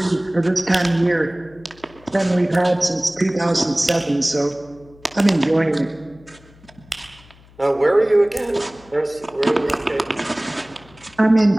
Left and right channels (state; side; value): noise; left; hum, 26 dB below the sound